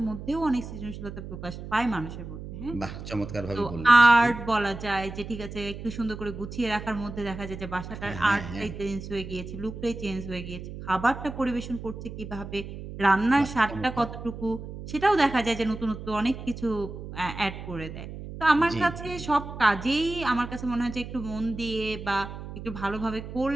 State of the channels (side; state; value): right; noise; hum, 10 dB below the sound